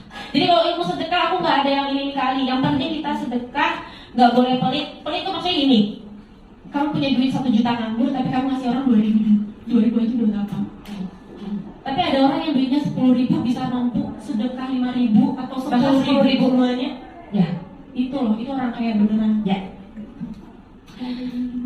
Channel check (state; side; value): identical; both; correlation 1.00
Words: Jadi kalau ilmu sedekah aku nggak ada yang ini kali. Yang penting kita sedekah, nggak boleh pelit. Pelit itu maksudnya gini. Kamu punya duit 1 juta nganggur, tapi kamu ngasih orang 2.000 aja udah apa? Tapi ada orang yang duitnya 10.000 bisa mampu sedekah 5.000 atau 10.000 semuanya. Ya, Itu loh, itu orang kaya beneran. ya.